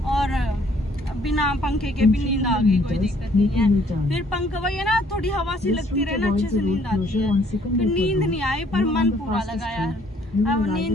और बिना पंखे के भी नींद आ गई, कोई दिक्कत नहीं है। फिर पंखा वही है ना, थोड़ी हवा सी लगती रहे ना, अच्छे से नींद आती है। फिर नींद नहीं आई पर मन पूरा लगा यार। अब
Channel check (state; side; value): normal; both; correlation 0.62